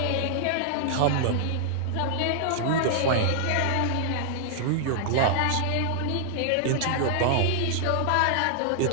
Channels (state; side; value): different; both; correlation -0.01